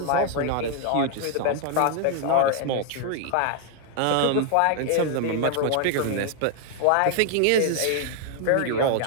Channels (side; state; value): both; different; correlation 0.00